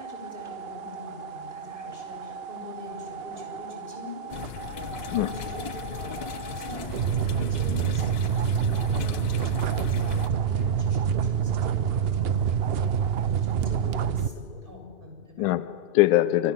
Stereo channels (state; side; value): late; left; 2.1 ms